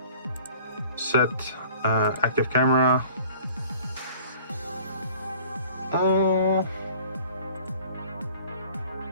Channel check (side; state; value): both; inverted; correlation -0.49